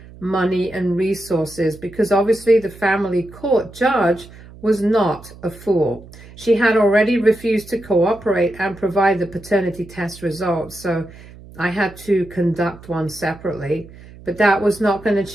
money, and resources, because obviously the family court judge was not a fool. She had already refused to cooperate and provide the paternity test results, so I had to conduct one separately, but that was not going to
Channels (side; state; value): right; noise; hum, 20 dB below the sound